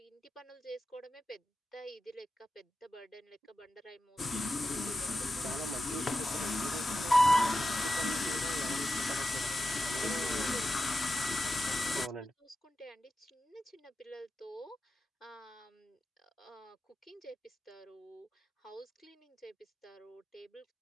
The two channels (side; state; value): both; normal; correlation 0.91